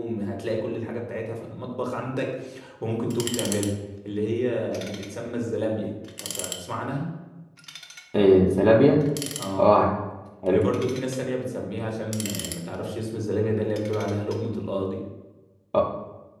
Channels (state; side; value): identical; both; correlation 1.00